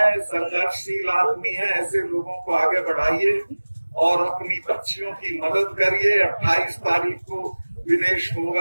संघर्षशील आदमी है, ऐसे लोगों को आगे बढ़ाइए और अपनी बच्चियों की मदद करिए। 28 तारीख को विनेश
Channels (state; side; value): inverted; both; correlation -1.00